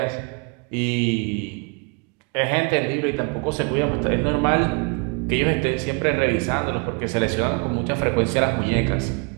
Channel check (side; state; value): left; quieter; 33.7 dB